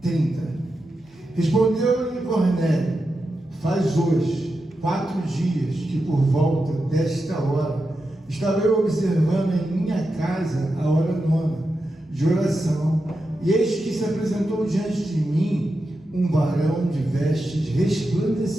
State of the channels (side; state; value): both; normal; correlation 0.89